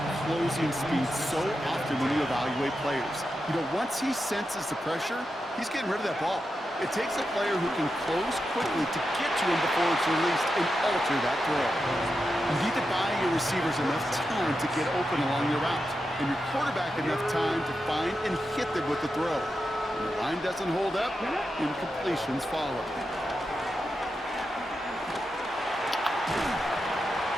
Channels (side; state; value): both; normal; correlation 0.88